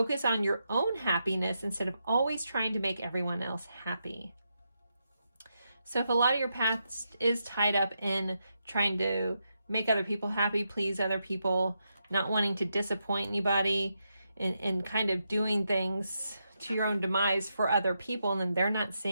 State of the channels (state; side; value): inverted; both; correlation -0.84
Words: on your own happiness instead of always trying to make everyone else happy. So if a lot of your past is tied up in trying to make other people happy, please other people, not wanting to disappoint anybody, and kind of doing things to your own demise for other people, and then they're not